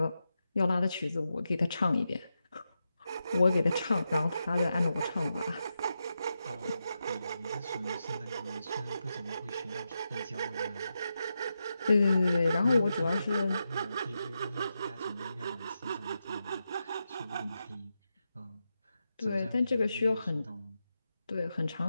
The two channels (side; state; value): both; inverted; correlation -0.88